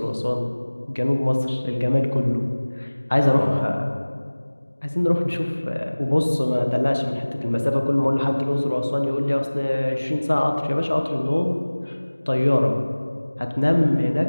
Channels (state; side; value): inverted; both; correlation -1.00